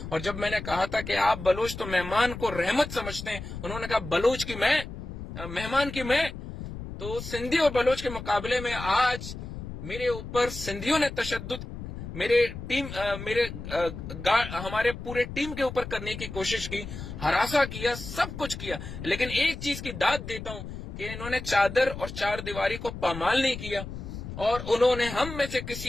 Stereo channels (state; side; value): noise; left; rumble, 9 dB below the sound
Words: اور جب میں نے کہا تھا کہ آپ بلوچ تو مہمان کو رحمت سمجھتے ہیں, انہوں نے کہا بلوچ کی میں, مہمان کی میں. تو سندھی اور بلوچ کے مقابلے میں آج میرے اوپر سندھیوں نے تشدد ہمارے پورے ٹیم کے اوپر کرنے کی کوشش کی, ہراساں کیا, سب کچھ کیا. لیکن ایک چیز کی داد دیتا ہوں کہ انہوں نے چادر اور چار دیواری کو پامال نہیں کیا, اور انہوں نے ہم میں سے